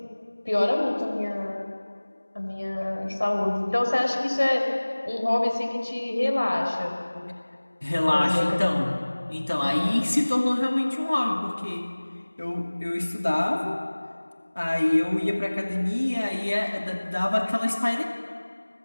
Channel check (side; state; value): both; inverted; correlation -1.00